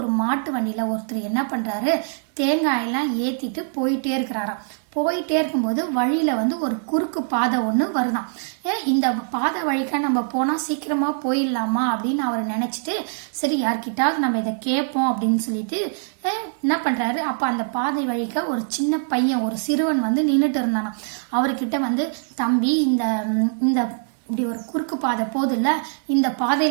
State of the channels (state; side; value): silent; left; 64 dB below the other